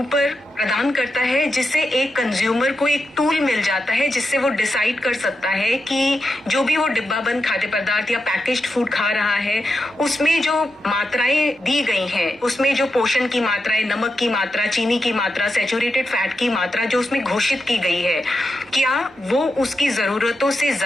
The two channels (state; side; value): normal; both; correlation 0.87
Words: प्रदान करता है, जिससे एक कंज्यूमर को एक टूल मिल जाता है जिससे वो डिसाइड कर सकता है कि जो भी वो डिब्बाबंद खाद्य पदार्थ या पैकेज्ड फूड खा रहा है उसमें जो मात्राएं दी गई हैं, उसमें जो पोषण की मात्राएं, नमक की मात्रा, चीनी की मात्रा, सैचुरेटेड फैट की मात्रा जो उसमें घोषित की गई है, क्या वो उसकी जरूरतों से